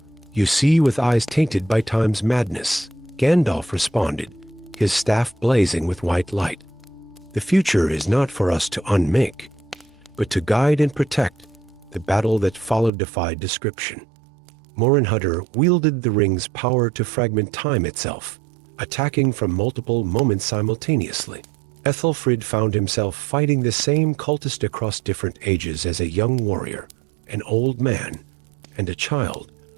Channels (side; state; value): left; drops out; at 12.9 s